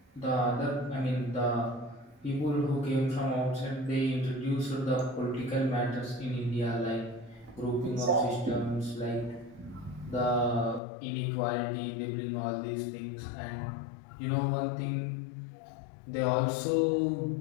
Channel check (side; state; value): right; drops out; at 10.8 s